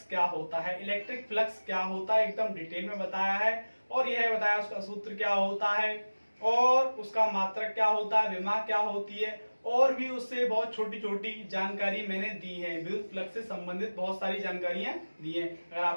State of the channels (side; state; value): both; inverted; correlation -1.00